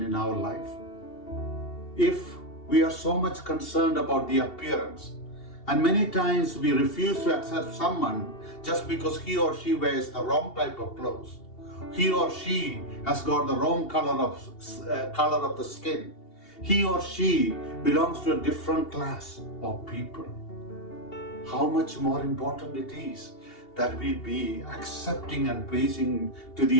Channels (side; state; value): right; late; 2.7 ms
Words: our life. If we are so much concerned about the appearance, and many times we refuse to accept someone just because he or she wears the wrong type of clothes, he or she has got the wrong color of the skin, he or she belongs to a different class of people. How much more important it is that we be accepting and pleasing to the